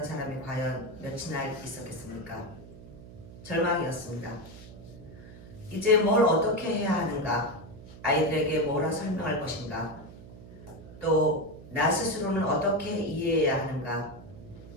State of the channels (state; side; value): noise; right; hum, 17 dB below the sound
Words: 사람이 과연 몇이나 있었겠습니까? 절망이었습니다. 이제 뭘 어떻게 해야 하는가? 아이들에게 뭐라 설명할 것인가? 또 나 스스로는 어떻게 이해해야 하는가?